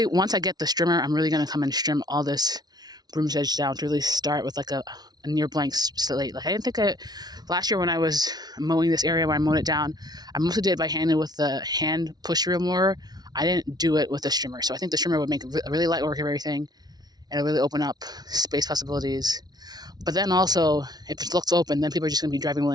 I get the strimmer, I'm really going to come and trim all this broom sedge down to really start with like a near blank slate. Like I didn't think last year when I was mowing this area, when I mowed it down, I mostly did it by hand with the hand push wheel mower. I didn't do it with the strimmer. So I think the strimmer would make a really light work of everything, and it'll really open up space possibilities. But then also, if it looks open, then people are just going to be driving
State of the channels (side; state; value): left; late; 0.19 ms